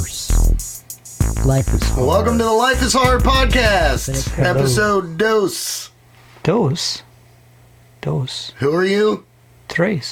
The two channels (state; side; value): identical; both; correlation 1.00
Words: Life is hard. Welcome to the Life is Hard podcast, episode dos. Dos? Dos. Who are you?